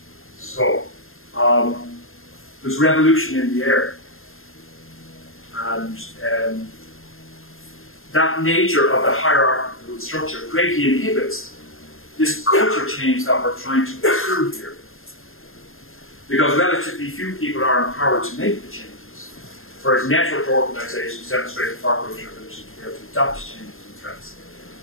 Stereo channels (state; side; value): late; right; 0.60 ms